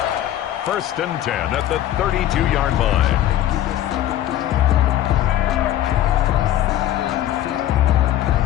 1st and 10 at the 32-yard line.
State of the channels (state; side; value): quieter; right; 12.5 dB